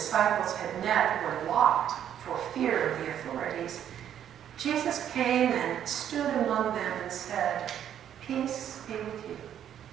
had met were locked for fear of the authorities, Jesus came and stood among them and said, peace be with you.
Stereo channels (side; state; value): left; quieter; 9.9 dB